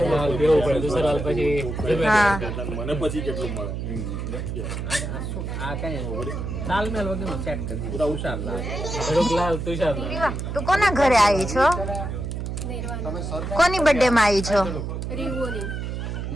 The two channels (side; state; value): right; noise; hum, 4 dB below the sound